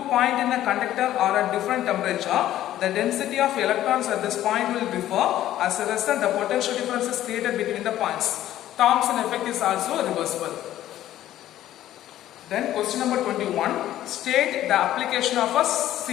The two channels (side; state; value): right; quieter; 13.0 dB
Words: point in a conductor are at different temperature, the density of electrons at this point will differ. As a result, the potential difference is created between the points. Thomson effect is also reversible. Then question number 21. State the application of a